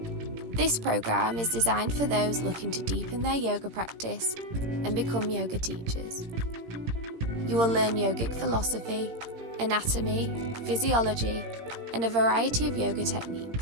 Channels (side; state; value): left; late; 17 ms